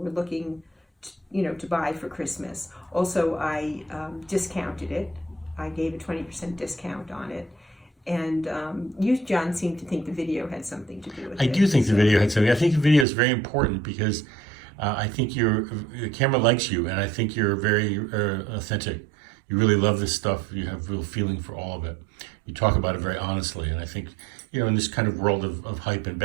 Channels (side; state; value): left; drops out; at 13.1 s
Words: looking to buy for Christmas. Also, I discounted it. I gave a 20% discount on it. And you, John, seem to think the video had something to do with it. I do think the video had something. I think the video is very important because I think the camera likes you, and I think you're very authentic. You really love this stuff. You have real feeling for all of it. You talk about it very honestly, and I think, in this kind of world of hype and